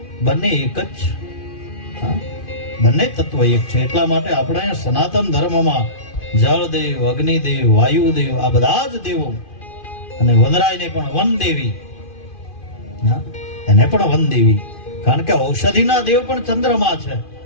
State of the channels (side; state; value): right; late; 2.5 ms